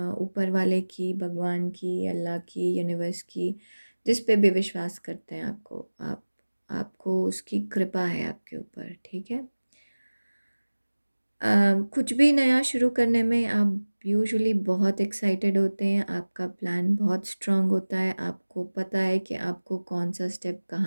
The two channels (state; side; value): inverted; both; correlation -1.00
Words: ऊपर वाले की, भगवान की, अल्लाह की, यूनिवर्स की, जिस पे भी विश्वास करते हैं, आपको उसकी कृपा है आपके ऊपर, ठीक है? कुछ भी नया शुरू करने में आप यूजुअली बहुत एक्साइटेड होते हैं, आपका प्लान बहुत स्ट्रांग होता है, आपको पता है कि आपको कौन सा स्टेप